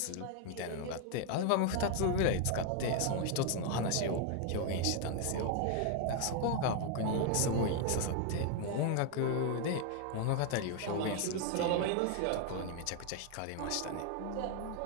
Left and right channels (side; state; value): both; different; correlation 0.00